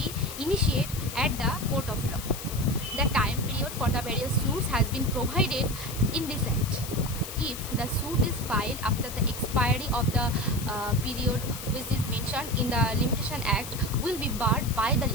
initiated at the court of law. The time period for the various suits has been provided in this act. If the suit is filed after the expiry of the period which is mentioned in the Limitation Act, will be barred by the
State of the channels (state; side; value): noise; left; hiss, 10 dB below the sound